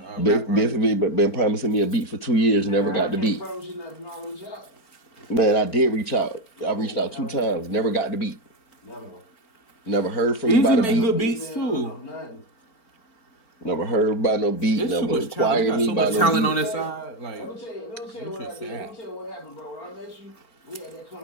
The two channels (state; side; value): late; right; 4.4 ms